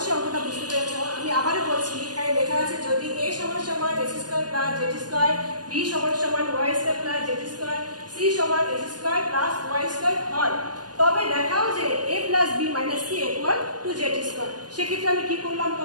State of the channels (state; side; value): late; left; 0.69 ms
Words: অঙ্কটা বুঝতে পেরেছো। আমি আবারও বলছি, এখানে লেখা আছে যদি a সমান সমান x square plus z square, b সমান সমান y square plus z square, c সমান x square plus y square হয়, তবে দেখাও যে a plus b minus c equal to z square. সেক্ষেত্রে আমি কি করলাম,